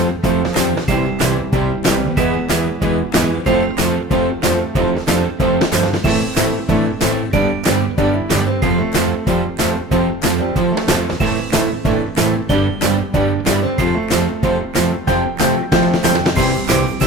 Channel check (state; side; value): normal; both; correlation 0.48